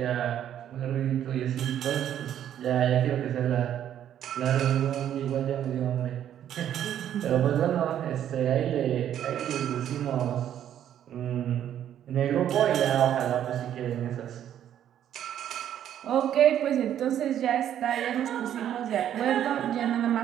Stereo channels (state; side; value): quieter; left; 10.5 dB